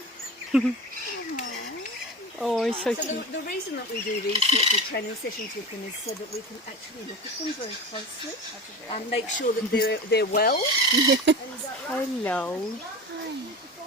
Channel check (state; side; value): normal; both; correlation 0.30